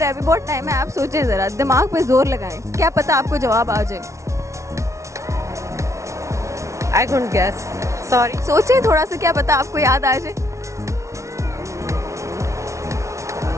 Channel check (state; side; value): late; left; 0.14 ms